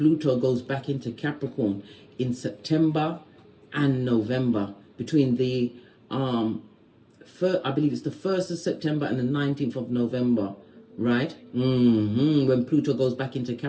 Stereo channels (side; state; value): both; identical; correlation 1.00